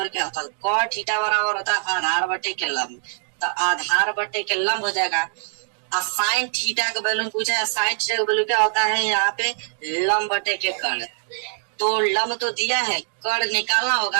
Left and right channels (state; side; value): silent; left; digital silence